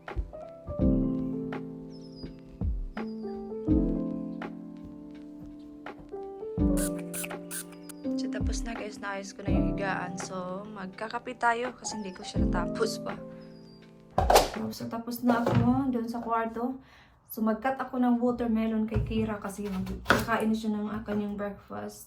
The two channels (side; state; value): both; identical; correlation 1.00